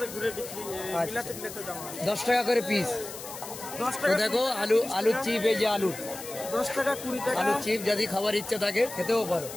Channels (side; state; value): left; noise; hiss, 12 dB below the sound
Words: ঘুরে বিক্রি 10 টাকা করে পিস। 10 টাকা দেখো আলুর চিপ, এই যে আলু 10 টাকা 20 টাকা আলুর চিপ যদি খাবার ইচ্ছা থাকে খেতেও পারো।